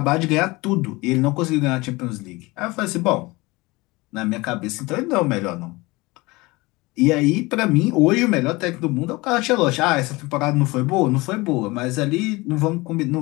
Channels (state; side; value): quieter; right; 22.8 dB